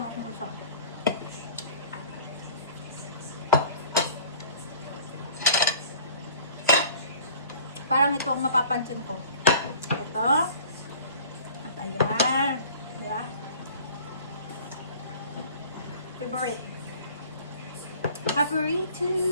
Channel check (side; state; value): both; inverted; correlation -0.47